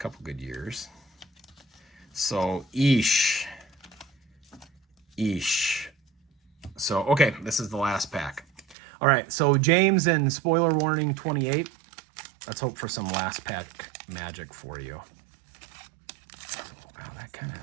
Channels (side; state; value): left; drops out; at 8.8 s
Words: good years. So, Eesh. So, okay, this is the last pack. All right, so James and spoiler warning 28. Let's hope for some last pack magic for you. So, wow,